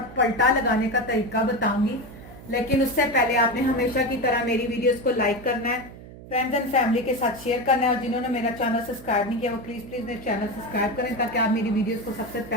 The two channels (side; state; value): right; noise; hum, 16 dB below the sound